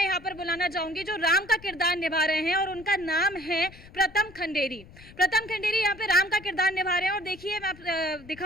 यहाँ पर बुलाना चाहूंगी जो राम का किरदार निभा रहे हैं और उनका नाम है प्रथम खंडेरी। प्रथम खंडेरी यहाँ पे राम का किरदार निभा रहे हैं और देखिए मैं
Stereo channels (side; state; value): left; noise; rumble, 20 dB below the sound